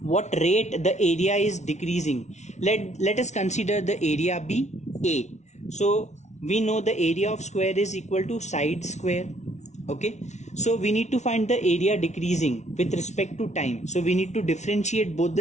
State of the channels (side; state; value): right; late; 0.33 ms